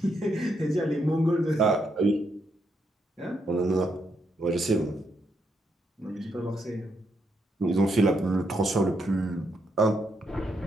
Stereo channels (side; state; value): both; normal; correlation 0.79